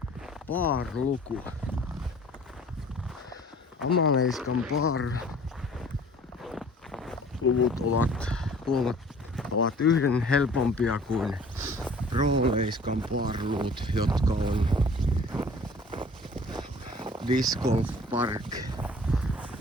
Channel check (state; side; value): normal; both; correlation 0.49